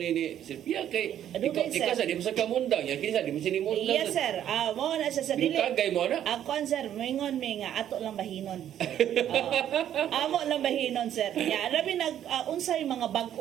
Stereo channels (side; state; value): left; quieter; 10.6 dB